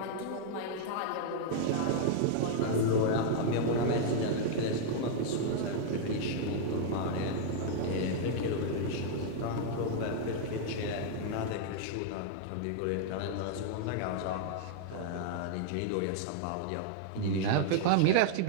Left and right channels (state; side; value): different; both; correlation -0.01